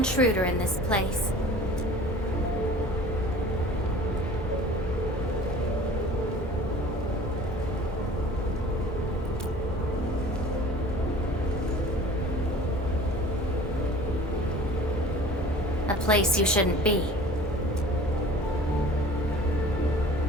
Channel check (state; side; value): normal; both; correlation 0.44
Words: in this place. A place you shouldn't be.